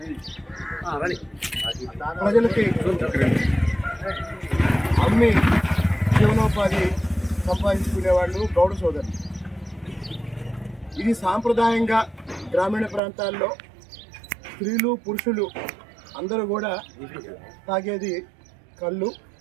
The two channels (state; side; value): drops out; left; at 13.0 s